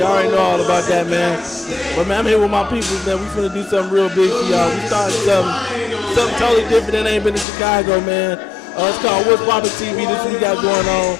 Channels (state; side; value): drops out; right; at 7.5 s